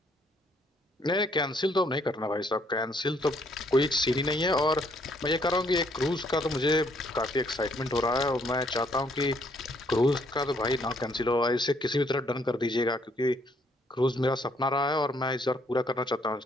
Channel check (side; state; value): both; normal; correlation 0.68